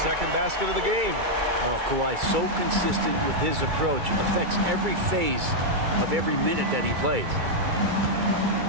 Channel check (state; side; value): late; left; 2.3 ms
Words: basket of the game. Oh, Kawhi so consistent with his approach. Affects every phase of every minute that he plays.